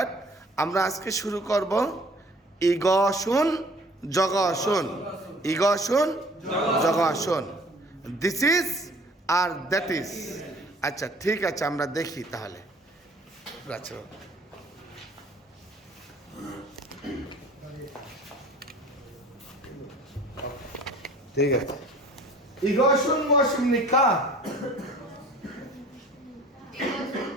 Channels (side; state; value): both; normal; correlation 0.51